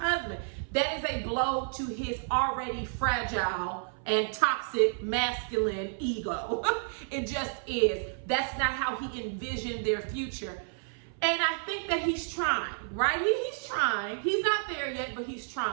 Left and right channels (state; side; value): silent; left; 56 dB below the other